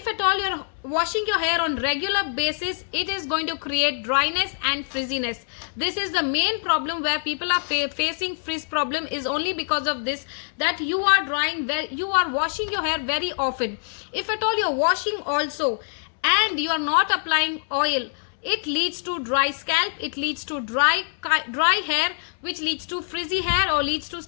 at all you're washing your hair on regular basis, it is going to create dryness and frizziness. This is the main problem where people are facing frizz problem, is only because of this, that you are washing your hair very often. If at all you're washing also and you are not applying oil, it leads to dry scalp, it leads to dry hair, which leads to frizzy hair or leads to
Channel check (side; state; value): right; silent; 62 dB below the other